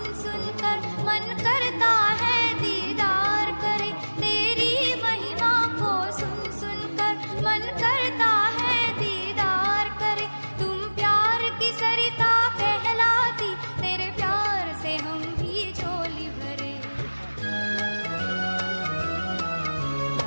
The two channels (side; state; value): both; inverted; correlation -1.00